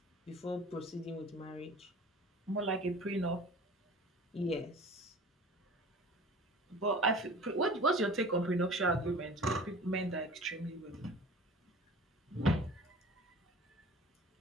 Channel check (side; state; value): both; normal; correlation 0.42